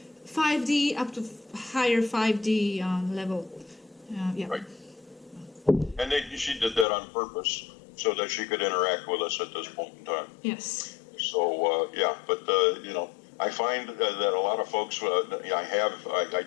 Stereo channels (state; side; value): drops out; right; at 6.9 s